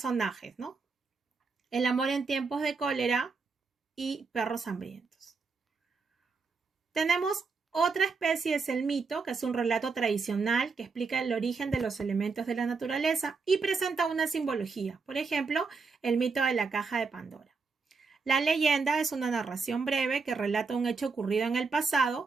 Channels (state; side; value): quieter; left; 4.6 dB